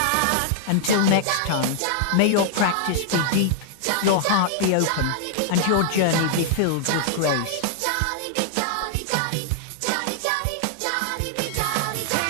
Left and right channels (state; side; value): different; both; correlation 0.00